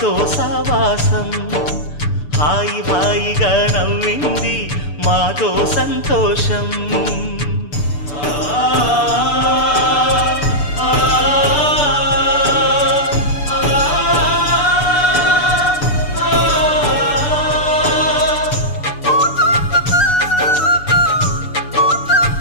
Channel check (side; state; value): right; late; 6.8 ms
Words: సావాసం హాయి హాయిగా నవ్వింది మాతో సంతోషం